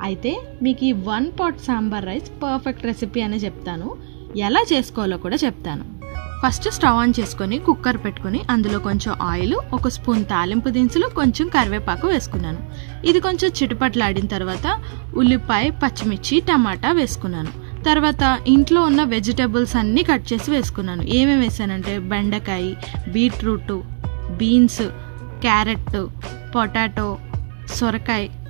అయితే మీకు ఈ 1 pot sambar rice perfect recipe అనే చెప్తాను. ఎలా చేసుకోవాలో కూడా చెప్తాను. ఫస్ట్ స్టవ్ ఆన్ చేసుకొని కుక్కర్ పెట్టుకొని అందులో కొంచెం ఆయిల్, 1 స్పూన్ తాలింపు దినుసులు, కొంచెం కరివేపాకు వేసుకున్నాను. ఇది కొంచెం చిటపట్లాడిన తర్వాత ఉల్లిపాయ, పచ్చిమిర్చి, టమాటా వేసుకున్నాను. తర్వాత ఇంట్లో ఉన్న వెజిటబుల్స్ అన్నీ కట్ చేసి వేసుకున్నాను. ఏమేమి వేసానంటే బెండకాయ, బీట్రూట్, బీన్స్, క్యారెట్, పొటాటో, సొరకాయ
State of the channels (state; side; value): silent; left; digital silence